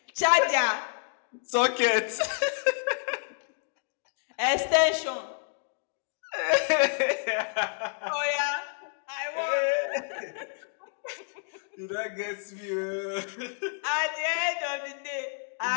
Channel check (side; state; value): right; silent; digital silence